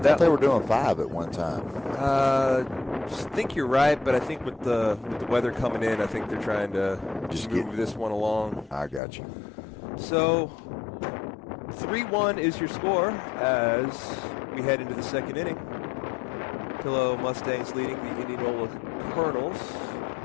they were doing 5 at one time. I think you're right, but I think with the weather coming in, I think they're trying to just move this one along. I got you. So 3-1 is your score as we head into the second inning. Pillow Mustangs leading the Indianola Colonels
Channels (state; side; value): drops out; right; at 9.0 s